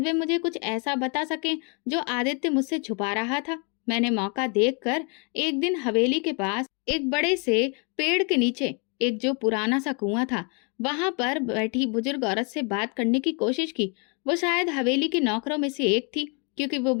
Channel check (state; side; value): quieter; right; 35.3 dB